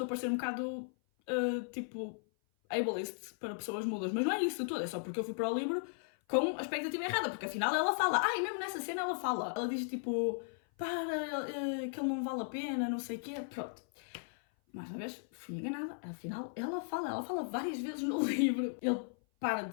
a parecer um bocado, tipo, ableist para pessoas mudas, mas não é isso tudo, é só porque eu fui para o livro com a expectativa errada, porque afinal ela fala, e mesmo nessa cena ela fala, ela diz tipo, que ele não vale a pena, não sei o quê, pronto. Mais uma vez, fui enganada, afinal ela fala várias vezes no livro. Ele para de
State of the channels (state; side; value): silent; right; 54 dB below the other